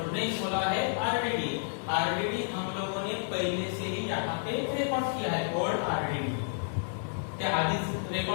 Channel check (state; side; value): silent; right; digital silence